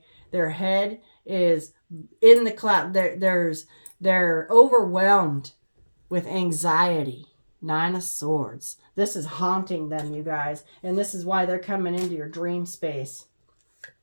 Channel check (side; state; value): both; inverted; correlation -1.00